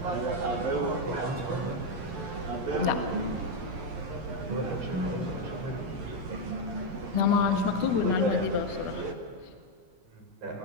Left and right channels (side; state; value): left; late; 11 ms